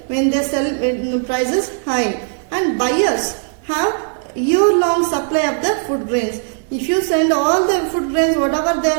when they sell when the price is high. And buyers have year-long supply of the food grains. If you send all the food grains, whatever they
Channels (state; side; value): silent; left; 59 dB below the other